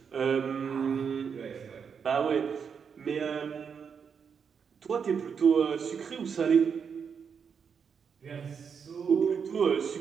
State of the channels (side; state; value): left; quieter; 6.6 dB